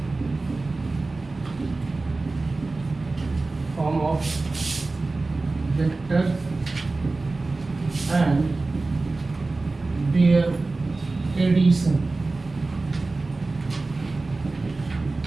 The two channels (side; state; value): left; quieter; 3.4 dB